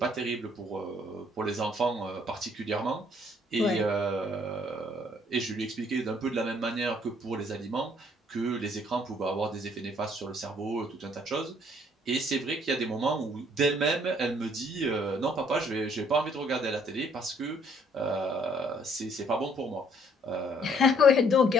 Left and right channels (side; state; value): both; normal; correlation 0.63